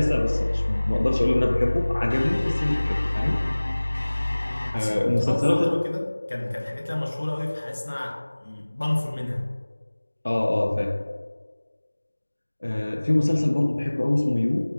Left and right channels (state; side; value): inverted; both; correlation -1.00